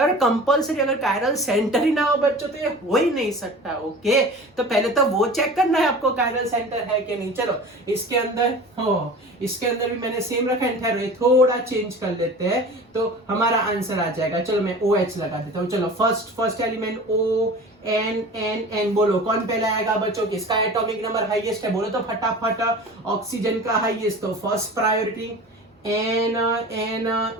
कंपल्सरी। अगर कायरल सेंटर ही ना हो बच्चों तो ये हो ही नहीं सकता। ओके, तो पहले तो वो चेक करना है आपको कायरल सेंटर है कि नहीं। चलो इसके अंदर हो, इसके अंदर भी मैंने सेम रखा है, थोड़ा चेंज कर लेते हैं तो हमारा आंसर आ जाएगा। चलो मैं OH लगा देता हूँ। चलो फर्स्ट एलिमेंट ON, बोलो कौन पहले आएगा बच्चों, किसका एटॉमिक नंबर हाईएस्ट है, बोलो तो फटाफट। ऑक्सीजन का हाईएस्ट, तो फर्स्ट प्रायोरिटी N,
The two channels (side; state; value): both; normal; correlation 0.38